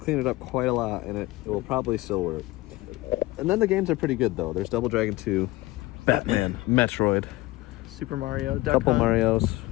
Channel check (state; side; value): quieter; right; 19.4 dB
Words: clean it up quite a lot, and it will probably still work. And then the games are pretty good, though. There's Double Dragon 2, Batman, Metroid, Super Mario, Duck couple Hunt, Marios,